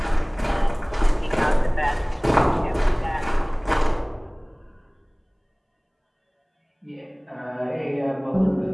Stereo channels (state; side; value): identical; both; correlation 1.00